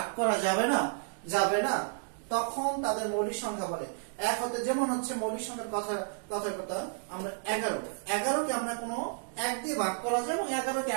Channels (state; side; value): silent; left; digital silence